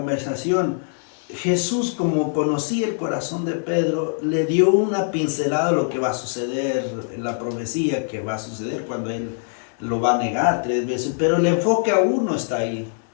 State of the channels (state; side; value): silent; right; 60 dB below the other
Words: Jesús, como conocía el corazón de Pedro, le dio una pincelada de lo que va a suceder, la profecía que va a suceder cuando él lo va a negar 3 veces, pero el enfoque aún no está ahí.